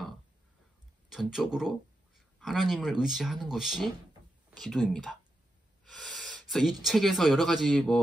전적으로 하나님을 의지하는 것이 기도입니다. 그래서 이 책에서 여러 가지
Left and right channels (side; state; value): both; normal; correlation 0.87